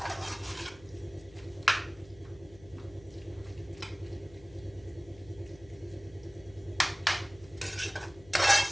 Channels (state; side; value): noise; left; hum, 22 dB below the sound